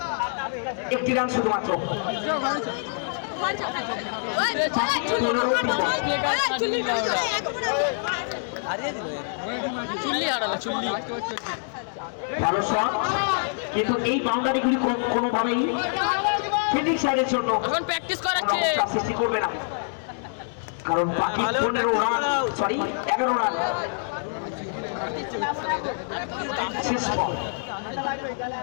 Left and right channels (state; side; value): silent; right; 59 dB below the other